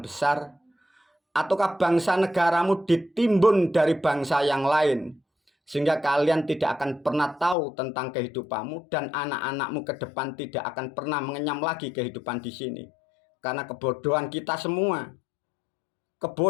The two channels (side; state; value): right; drops out; at 7.6 s